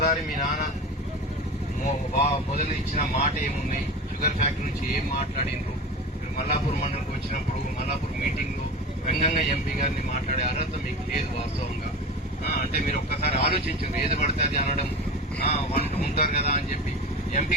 మీ నాన్న మొదలు ఇచ్చిన మాట ఏముంది, షుగర్ ఫ్యాక్టరీ నుంచి ఏం మాట్లాడినరు, మీరు మల్లాపూర్ మండలికి వచ్చినప్పుడు మల్లాపూర్ మీటింగ్ లో వ్యంగ్యంగా ఎంపీ గారిని మాట్లాడే అర్హత మీకు లేదు వాస్తవంగా. అంటే మీరు ఒక్కసారి ఆలోచించారు, ఏది పడితే అది అనడం ఉంటారు కదా అని చెప్పి. ఎంపీ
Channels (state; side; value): normal; both; correlation 0.30